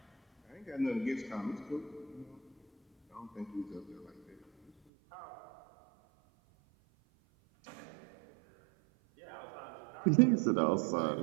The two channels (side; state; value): left; drops out; at 4.7 s